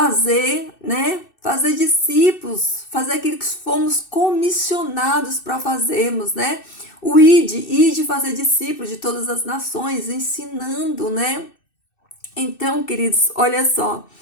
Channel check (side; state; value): right; late; 2.6 ms